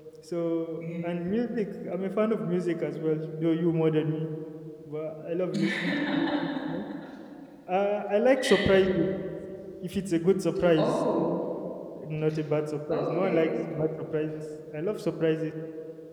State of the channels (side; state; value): both; identical; correlation 1.00